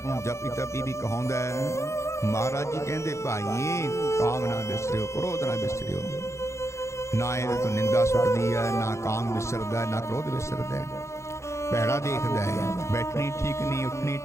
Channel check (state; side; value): late; right; 0.14 ms